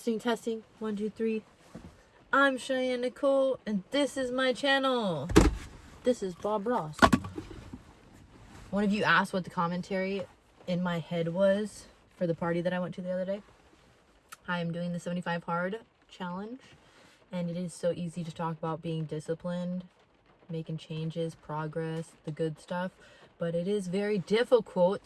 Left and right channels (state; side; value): identical; both; correlation 1.00